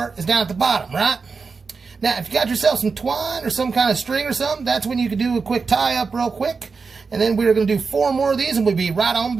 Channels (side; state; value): left; quieter; 4.8 dB